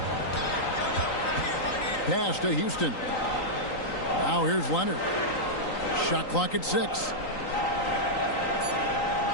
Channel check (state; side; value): late; right; 3.9 ms